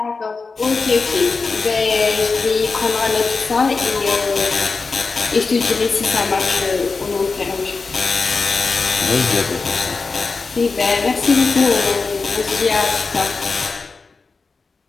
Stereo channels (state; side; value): quieter; right; 4.3 dB